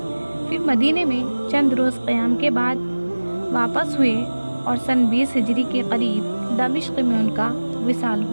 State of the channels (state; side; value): inverted; both; correlation -1.00